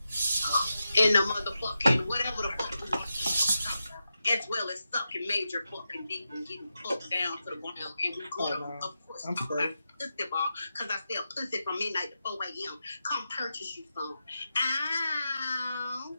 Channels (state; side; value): inverted; both; correlation -0.89